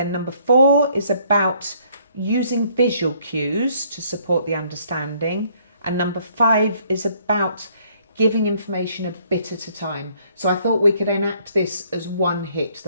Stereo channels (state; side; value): inverted; both; correlation -0.64